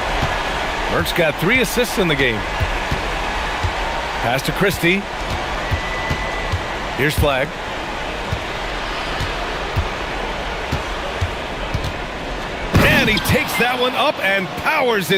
Burke's got 3 assists in the game. Pass to Christie. Here's Flag. And he takes that one up and powers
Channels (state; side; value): identical; both; correlation 1.00